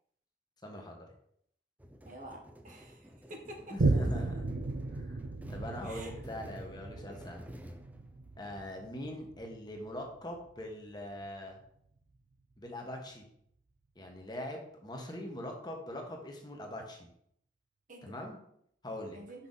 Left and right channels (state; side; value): normal; both; correlation 0.75